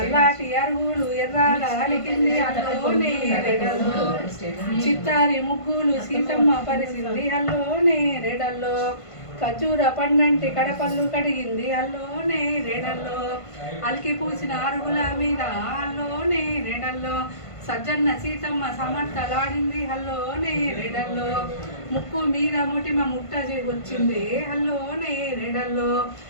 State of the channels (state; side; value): late; right; 1.5 ms